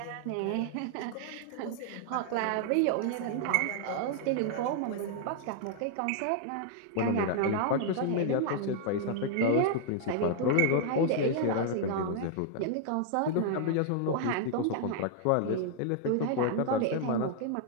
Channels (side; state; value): both; different; correlation -0.01